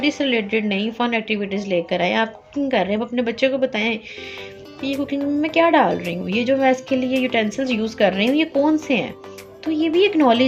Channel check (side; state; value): both; identical; correlation 1.00